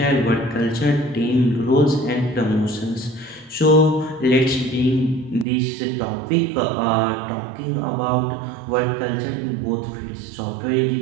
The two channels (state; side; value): drops out; left; at 5.5 s